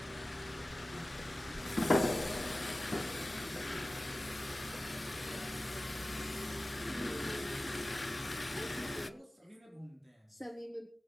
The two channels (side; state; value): both; normal; correlation 0.97